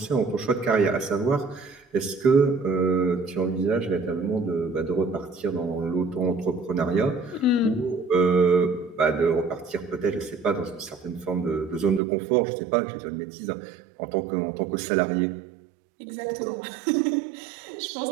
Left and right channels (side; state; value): left; drops out; at 12.0 s